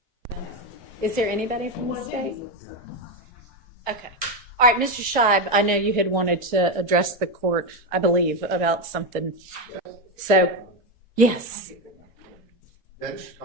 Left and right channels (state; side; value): normal; both; correlation 0.10